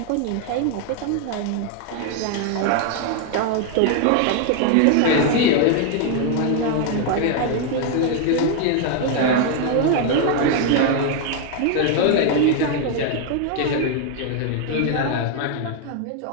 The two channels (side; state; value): both; different; correlation 0.00